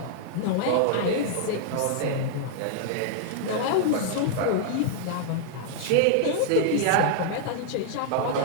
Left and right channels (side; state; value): both; different; correlation -0.01